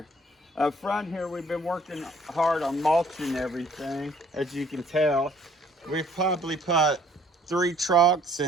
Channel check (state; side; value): normal; both; correlation 0.58